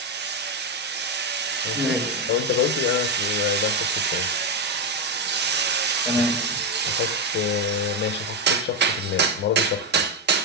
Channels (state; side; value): normal; both; correlation 0.07